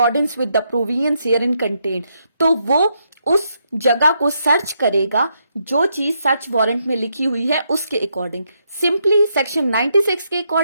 with the provisions herein contained, तो वो उस जगह को सर्च करेगा जो चीज सर्च वारंट में लिखी हुई है उसके अकॉर्डिंग। सिंपली सेक्शन 96 के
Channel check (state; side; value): inverted; both; correlation -0.78